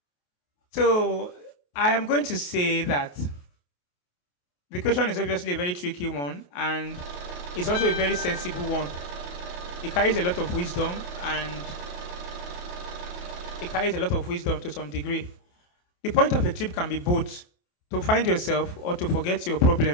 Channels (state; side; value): late; right; 28 ms